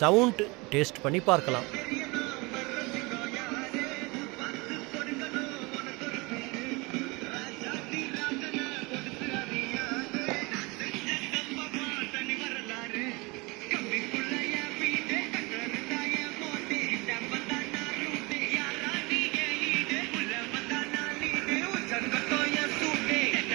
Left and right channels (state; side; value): quieter; left; 26.0 dB